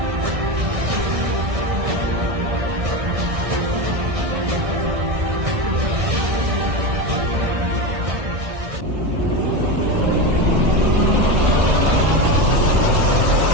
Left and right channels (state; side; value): late; left; 1.6 ms